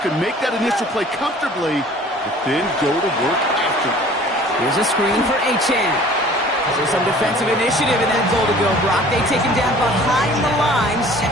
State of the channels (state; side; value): normal; both; correlation 0.49